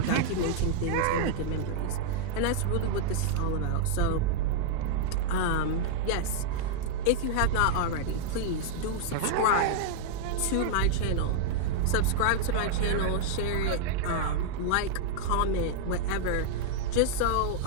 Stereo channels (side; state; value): both; different; correlation -0.01